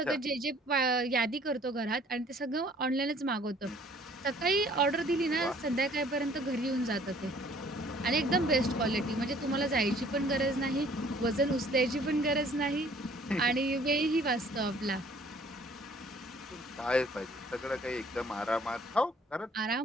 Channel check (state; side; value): normal; both; correlation 0.57